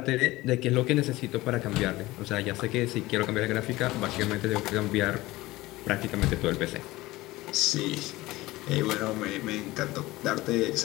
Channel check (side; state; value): right; quieter; 19.0 dB